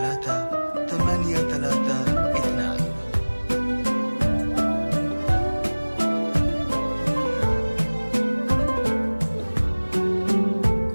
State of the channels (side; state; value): both; inverted; correlation -1.00